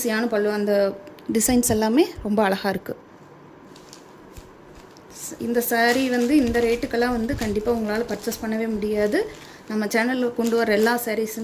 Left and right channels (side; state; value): both; identical; correlation 1.00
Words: பல்லு. அந்த டிசைன்ஸ் எல்லாமே ரொம்ப அழகாக இருக்குது. இந்த சாரீ வந்து இந்த ரேட்டுக்கெல்லாம் வந்து கண்டிப்பாக உங்களால் பர்ச்சேஸ் பண்ணவே முடியாது. நம்ம சேனலில் கொண்டு வர எல்லா